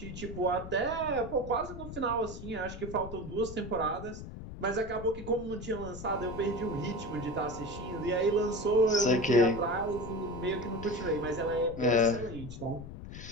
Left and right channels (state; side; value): noise; left; rumble, 11 dB below the sound